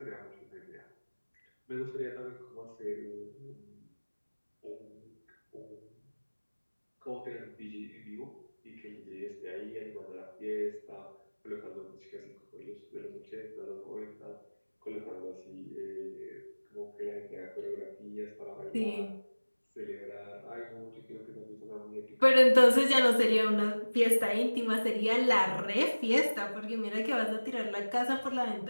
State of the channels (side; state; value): both; inverted; correlation -1.00